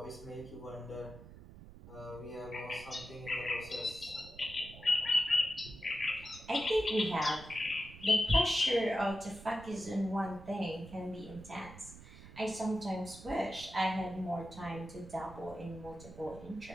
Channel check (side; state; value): right; noise; rumble, 17 dB below the sound